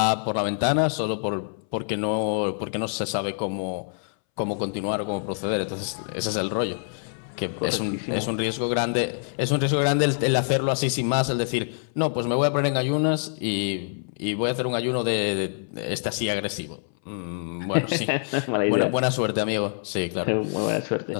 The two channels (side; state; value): right; silent; 61 dB below the other